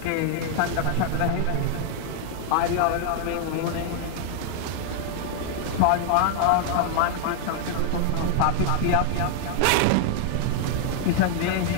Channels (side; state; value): both; different; correlation 0.00